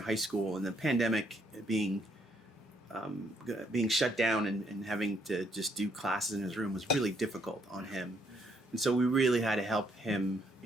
school, and the pandemic being shut down and having to just do classes in his room was really difficult on him. And so we really had to help him,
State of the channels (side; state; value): both; normal; correlation 0.71